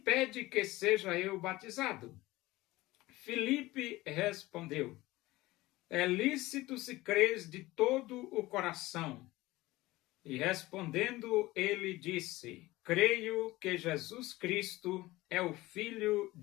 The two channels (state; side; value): quieter; right; 18.9 dB